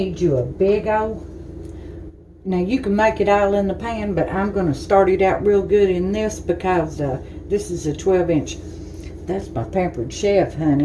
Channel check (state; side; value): identical; both; correlation 1.00